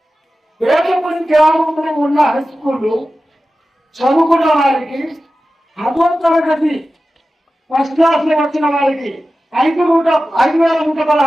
వేటపూడి గ్రామంలో ఉన్న హై స్కూళ్ళు చదువుకున్న వారికి 10వ తరగతి ఫస్ట్ క్లాస్ లో వచ్చిన వారికి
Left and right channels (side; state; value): both; normal; correlation 0.94